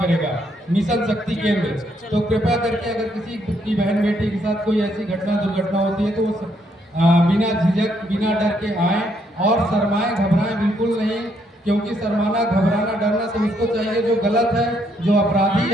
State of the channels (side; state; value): both; normal; correlation 0.73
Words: मिशन शक्ति केंद्र। तो कृपया करके अगर किसी की बहन बेटी के साथ कोई ऐसी घटना दुर्घटना होती है तो वो बिना झिझक बिना डर के आए और शर्माएं घबराएं बिल्कुल नहीं, क्योंकि शर्माना घबराना डरना तो उसको चाहिए जो गलत है, जो अपराधी